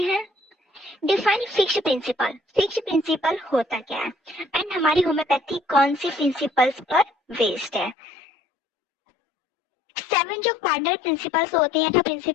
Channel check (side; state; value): right; drops out; at 8.0 s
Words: Define fixed principle. Fixed principle होता क्या है एंड हमारी होम्योपैथी कौन सी प्रिंसिपल्स पर बेस्ड है। 7 जो कार्डिनल प्रिंसिपल्स होते हैं, जो